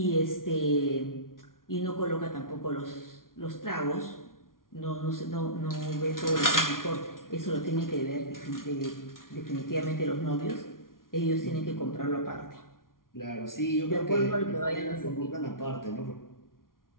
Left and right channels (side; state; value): right; late; 0.91 ms